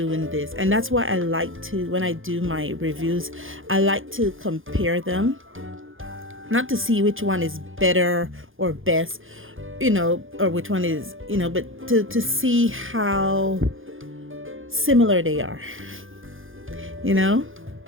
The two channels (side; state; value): left; late; 0.59 ms